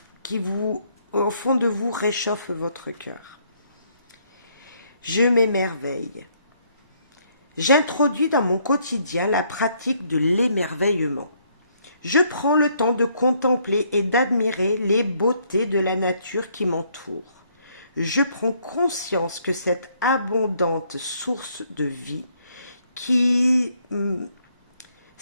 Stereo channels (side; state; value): both; inverted; correlation -0.69